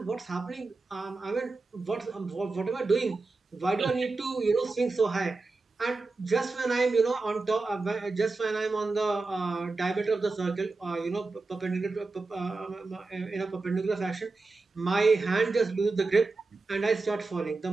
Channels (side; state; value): left; quieter; 3.7 dB